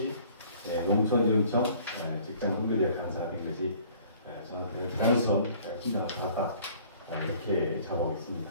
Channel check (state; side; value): inverted; both; correlation -0.54